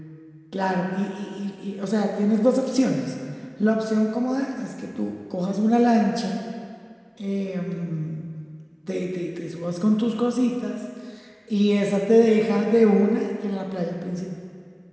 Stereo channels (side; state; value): both; identical; correlation 1.00